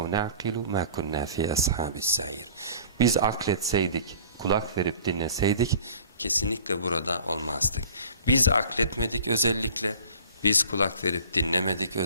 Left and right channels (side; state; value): both; inverted; correlation -0.47